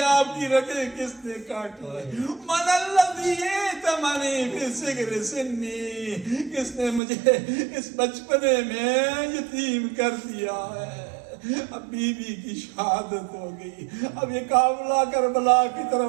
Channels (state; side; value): drops out; left; at 7.0 s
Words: آپ کی رگیں کس نے کاٹی ہے؟ من الذی ائتمنی فی صغر سنی، کس نے مجھے اس بچپنے میں یتیم کر دیا ہے؟ اب بیوی کی شہادت ہو گئی، اب یہ قافلہ کربلا کی